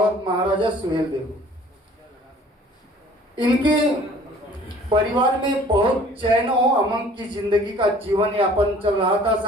महाराजा सुहेल देव। इनके परिवार में बहुत चैन और अमन की जिंदगी का जीवन यापन चल रहा था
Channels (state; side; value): normal; both; correlation 0.51